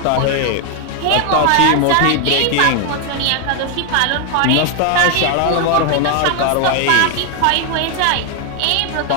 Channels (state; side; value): different; both; correlation 0.00